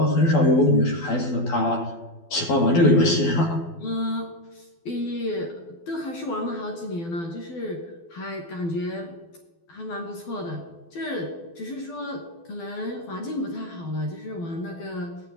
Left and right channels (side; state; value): right; late; 12 ms